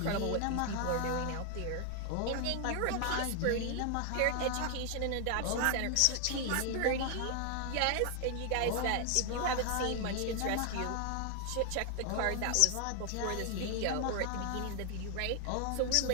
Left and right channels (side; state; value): both; different; correlation 0.00